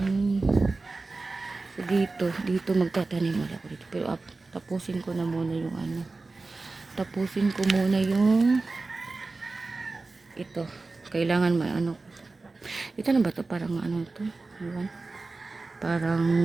So dito magtatanim ako dito. Pero tapusin ko na muna yung ano. Tapusin ko muna yung ito. Kailangan may ano. Ito na ba ito? Parang ano ito? Iwan. Parang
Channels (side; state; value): left; quieter; 3.6 dB